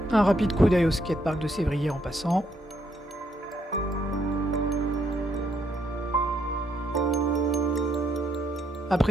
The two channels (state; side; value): normal; both; correlation 0.74